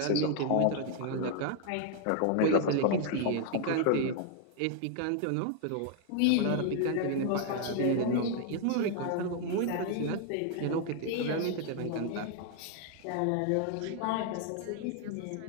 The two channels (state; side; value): different; both; correlation 0.00